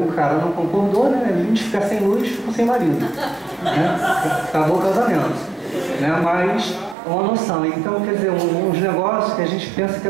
cara não concordou, né? Ele de ficar sem luz, ficou sem marido. Né? Acabou o casamento. Né? Mas uma noção. Então, quer dizer, uns negócios que a gente pensa que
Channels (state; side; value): drops out; left; at 7.0 s